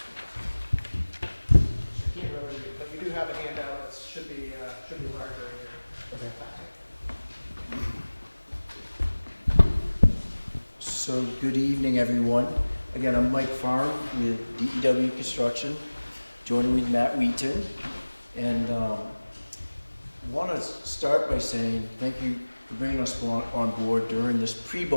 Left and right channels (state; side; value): inverted; both; correlation -1.00